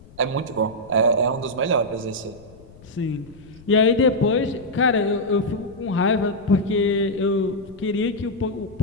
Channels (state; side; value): noise; left; rumble, 23 dB below the sound